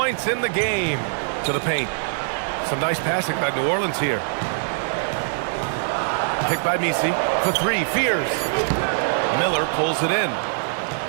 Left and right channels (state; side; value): silent; left; digital silence